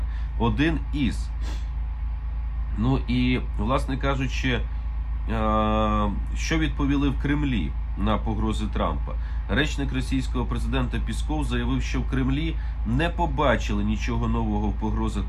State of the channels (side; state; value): both; identical; correlation 1.00